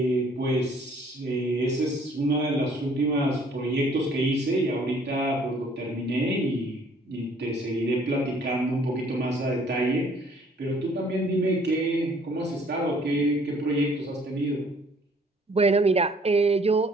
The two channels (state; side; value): normal; both; correlation 0.59